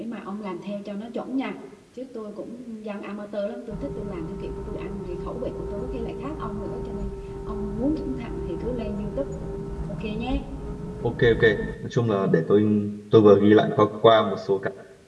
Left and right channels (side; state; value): both; identical; correlation 1.00